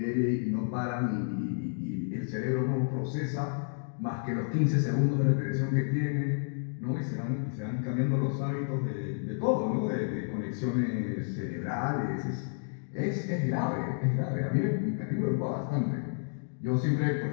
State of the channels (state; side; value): silent; right; digital silence